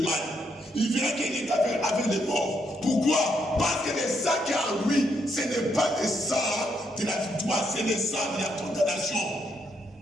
il verra qu'il est avec les morts. Pourquoi? Parce que le sang qui est en lui, ce n'est pas le sang de la victoire, c'est le sang de la condamnation.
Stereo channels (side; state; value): both; normal; correlation 0.76